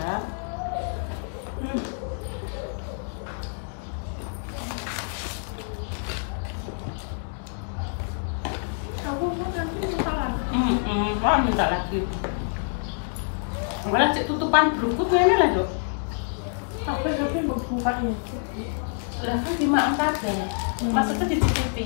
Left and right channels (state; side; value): silent; right; digital silence